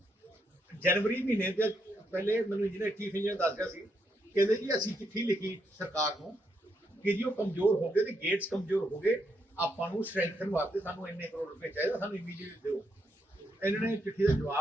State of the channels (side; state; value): both; normal; correlation 0.78